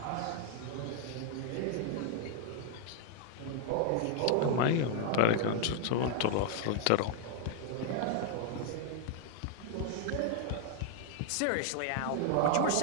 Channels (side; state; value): both; different; correlation 0.00